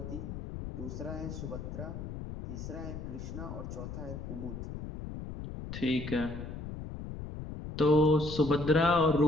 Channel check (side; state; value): left; noise; rumble, 8 dB below the sound